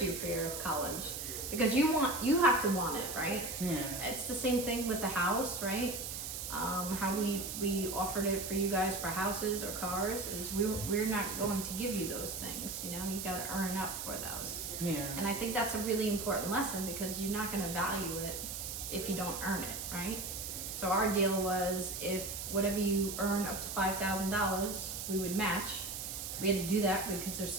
you for your college, because you have to want it, right? yeah. It's the same thing with the house, right? How we offered it for you guys for houses or cars is we're not going to give you those things. You know, you got to earn up for those. Yeah. And I think that's a really important lesson, because you're not going to value it if you don't earn it, right? So our deal was, if whatever you earn up to $5,000, we would match. We had to do that because there's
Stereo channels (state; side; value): noise; right; hiss, 5 dB below the sound